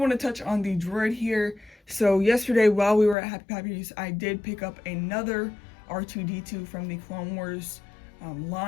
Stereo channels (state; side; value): drops out; right; at 3.2 s